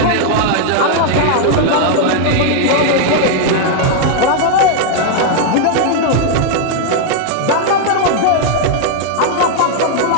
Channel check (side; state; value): both; different; correlation 0.00